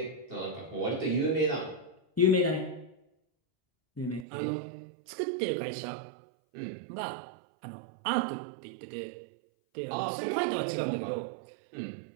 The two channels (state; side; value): drops out; left; at 4.2 s